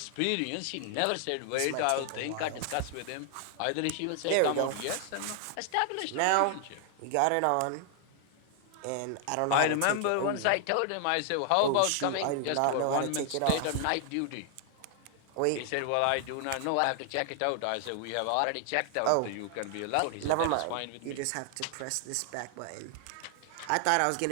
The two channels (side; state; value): both; different; correlation 0.00